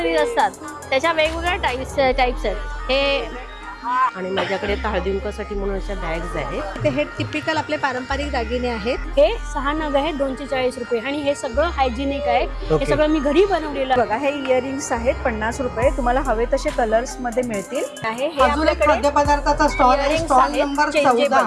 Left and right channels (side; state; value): both; identical; correlation 1.00